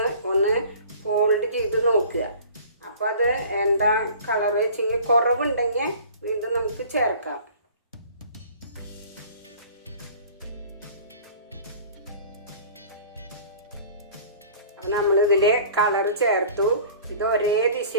ഒന്ന് ഫോൾഡ് ചെയ്ത് നോക്കുക. അപ്പോൾ അത് എന്താ കളർ വെച്ചെങ്കിൽ കുറവുണ്ടെങ്കിൽ വീണ്ടും നമുക്ക് ചേർക്കാം. അപ്പോൾ നമ്മളിതിൽ കളർ ചേർത്തു. ഇത് ഒരേ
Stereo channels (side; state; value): both; inverted; correlation -0.45